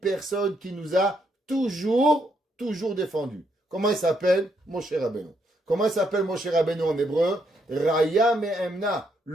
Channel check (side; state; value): both; normal; correlation 0.75